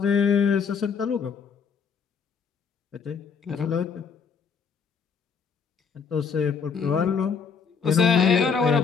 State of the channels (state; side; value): quieter; right; 6.1 dB